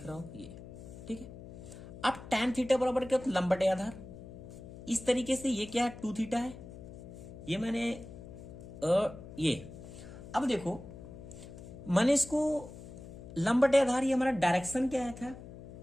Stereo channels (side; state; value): left; noise; hum, 14 dB below the sound